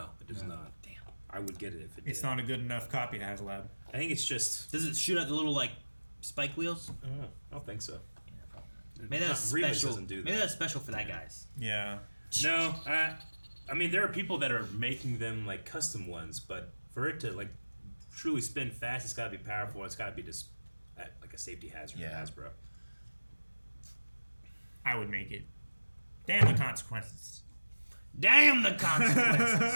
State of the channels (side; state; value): both; inverted; correlation -1.00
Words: it does not. Damn. I would get it if it did. It's not a good enough copy to HasLab. I think it's just... Does it shoot out the little, spike wheels? I don't think so. Maybe that's special. Doesn't do that. Maybe that's special for that guys. Yeah. No, I mean there are people that are making them custom ones, but for it to truly spin fast, it's got to be powerful. It's got to be just like a safety hazard for Hasbro. I would make it. Damn the consequences. Damn the